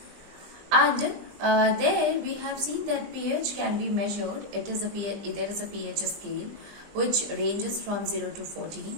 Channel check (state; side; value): late; left; 20 ms